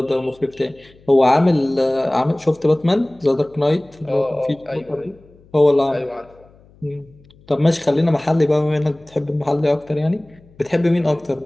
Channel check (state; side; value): noise; left; hum, 28 dB below the sound